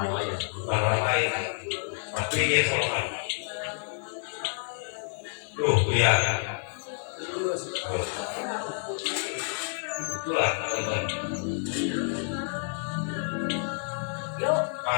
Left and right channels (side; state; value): right; silent; 59 dB below the other